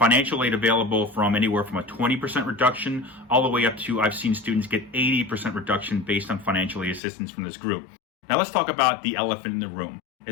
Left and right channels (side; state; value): right; drops out; at 7.0 s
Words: aid available from anywhere from a 20% reduction all the way up to, I've seen students get 80% reduction based on financial aid assistance from this group. Now let's talk about the elephant in the room.